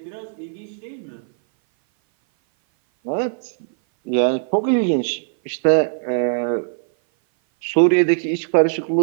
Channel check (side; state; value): left; silent; 58 dB below the other